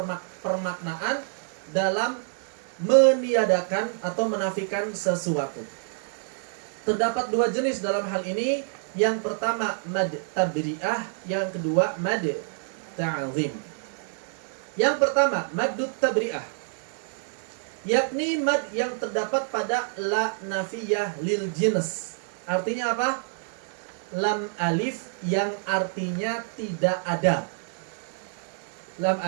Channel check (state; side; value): silent; left; 60 dB below the other